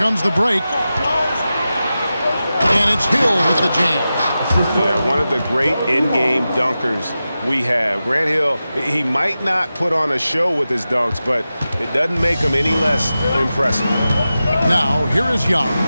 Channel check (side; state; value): both; inverted; correlation -0.93